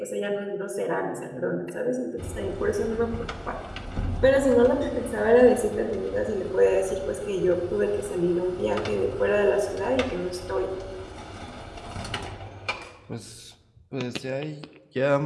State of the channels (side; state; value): both; identical; correlation 1.00